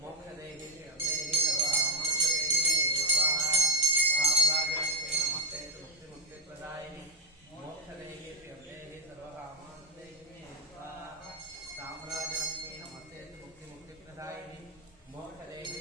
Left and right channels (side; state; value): both; normal; correlation 0.08